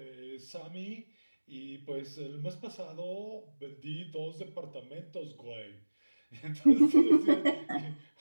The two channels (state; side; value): inverted; both; correlation -1.00